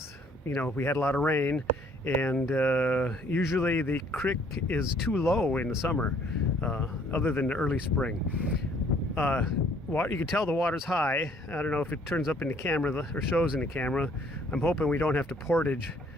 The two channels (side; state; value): both; normal; correlation 0.61